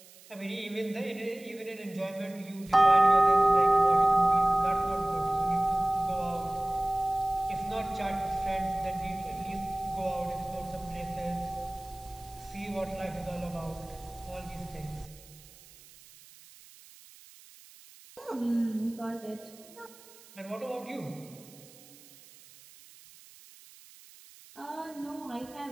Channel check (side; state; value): right; noise; hiss, 22 dB below the sound